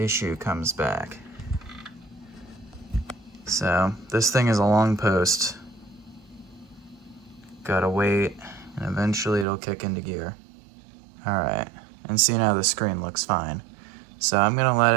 comes back. So, this thing is a long post. Gotta wait. And eventually it'll kick into gear. Alright, and see now the screen looks fine. So I'm gonna let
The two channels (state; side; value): drops out; left; at 9.5 s